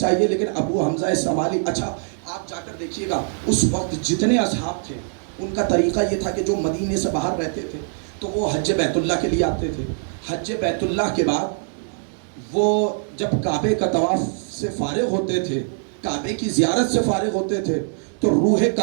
لیکن ابو حمزہ الصمالی, اچھا آپ جا کر دیکھیے گا, اس وقت جتنے اصحاب تھے ان کا طریقہ یہ تھا کہ جو مدینے سے باہر رہتے تھے تو وہ حج بیت اللہ کے لیے آتے تھے. حج بیت اللہ کے بعد وہ جب کعبے کا طواف سے فارغ ہوتے تھے, کعبے کی زیارت سے فارغ ہوتے تھے, تو روح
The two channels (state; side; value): silent; left; digital silence